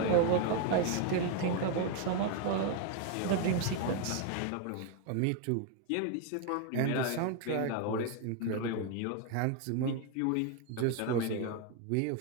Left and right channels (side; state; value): both; different; correlation 0.01